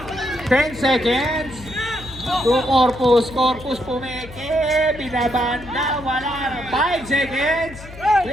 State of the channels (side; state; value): left; noise; hum, 16 dB below the sound